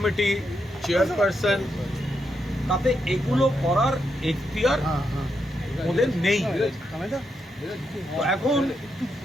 চেয়ারপারসন, তাতে এগুলো করার এখতিয়ার ওদের নেই। এখন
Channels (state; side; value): normal; both; correlation 0.82